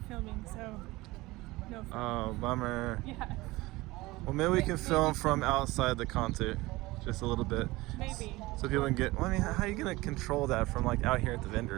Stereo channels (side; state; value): left; quieter; 20.3 dB